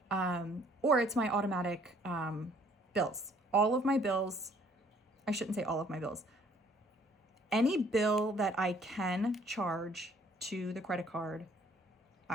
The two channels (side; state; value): both; normal; correlation 0.60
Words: Or it's my automatic bills. All of my bills, I shouldn't say all of my bills. Any bill that I can charge to the credit card,